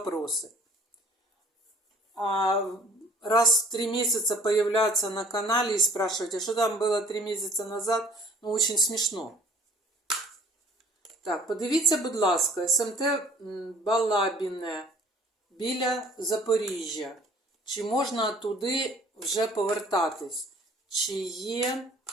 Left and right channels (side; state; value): both; normal; correlation 0.53